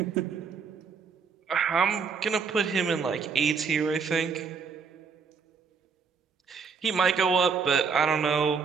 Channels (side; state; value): left; quieter; 5.5 dB